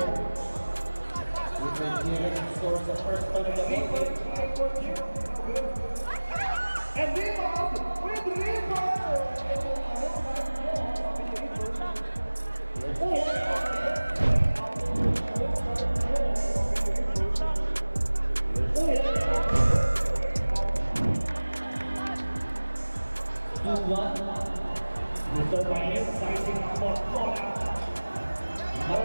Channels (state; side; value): inverted; both; correlation -1.00